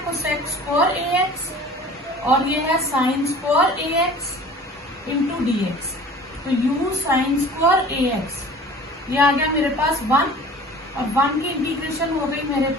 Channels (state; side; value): normal; both; correlation 0.44